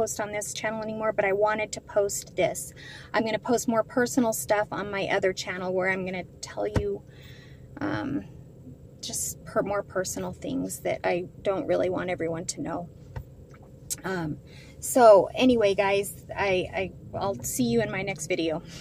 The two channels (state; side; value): identical; both; correlation 1.00